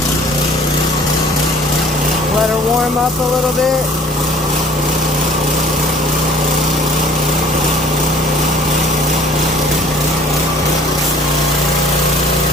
Let her warm up a little bit.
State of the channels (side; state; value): both; normal; correlation 0.53